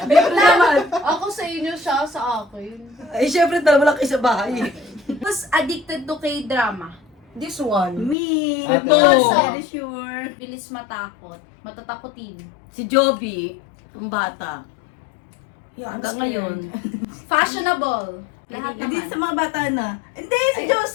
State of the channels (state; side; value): drops out; right; at 8.2 s